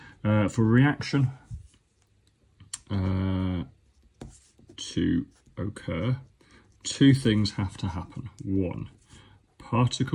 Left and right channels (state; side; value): identical; both; correlation 1.00